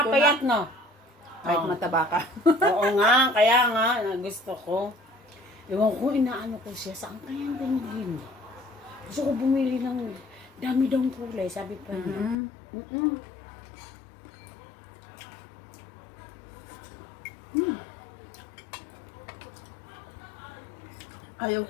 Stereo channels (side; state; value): right; drops out; at 12.4 s